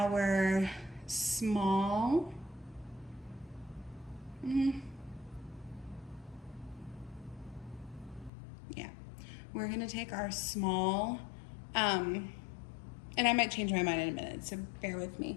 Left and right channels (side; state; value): right; drops out; at 8.3 s